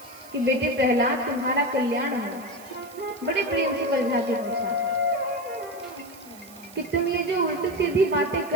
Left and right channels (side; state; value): right; noise; hiss, 21 dB below the sound